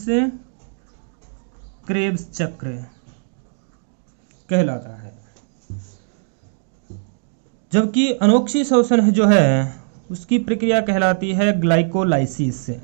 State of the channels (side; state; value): left; silent; digital silence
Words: क्रेब्स चक्र कहलाता है। जबकि अनोक्सीशोषण जो है उसकी प्रक्रिया कहलाती है ग्लाइकोलाइसिस,